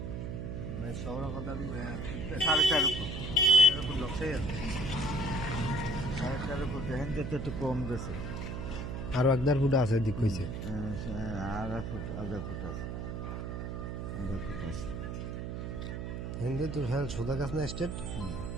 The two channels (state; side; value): noise; right; hum, 5 dB below the sound